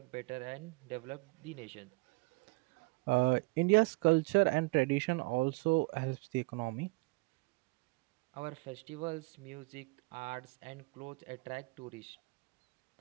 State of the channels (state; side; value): quieter; left; 27.2 dB